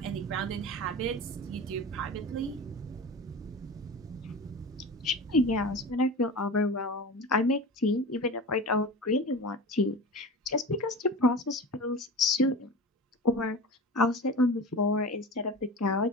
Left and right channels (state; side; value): normal; both; correlation 0.32